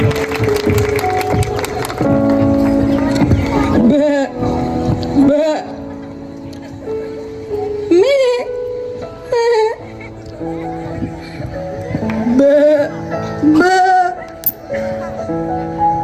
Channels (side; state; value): both; identical; correlation 1.00